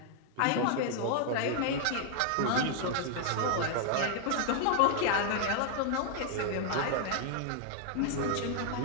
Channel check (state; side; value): different; both; correlation 0.00